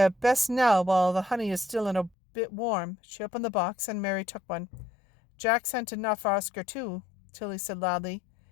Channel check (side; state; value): right; drops out; at 2.1 s